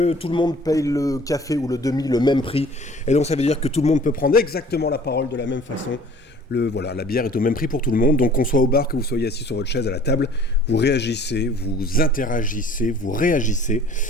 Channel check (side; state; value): both; normal; correlation 0.50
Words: tout le monde paye le café ou le demi le même prix, et donc ça veut dire que tout le monde peut prendre exactement la parole de la même façon. La bière est au même prix pour tout le monde, donc qu'on soit au bar, que vous soyez assis sur votre chaise à la table, vous réagissez, vous interagissez, vous réagissez,